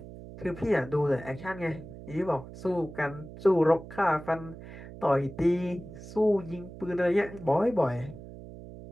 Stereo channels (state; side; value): noise; right; hum, 14 dB below the sound